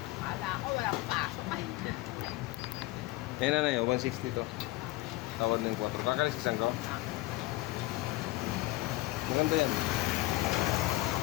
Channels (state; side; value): quieter; right; 19.3 dB